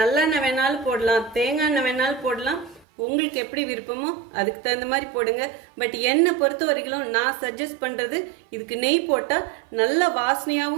வேணாலும் போடலாம், தேங்காய் எண்ணெய் வேணாலும் போடலாம். உங்களுக்கு எப்படி விருப்பமோ அதுக்கு தகுந்த மாதிரி போடுங்க. பட் என்னை பொறுத்த வரைக்கும் நான் சஜஸ்ட் பண்றது இதுக்கு நெய் போட்டா நல்ல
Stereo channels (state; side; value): drops out; left; at 2.9 s